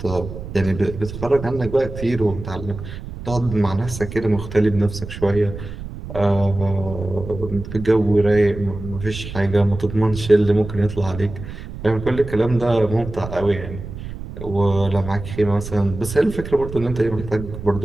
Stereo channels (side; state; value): right; noise; rumble, 10 dB below the sound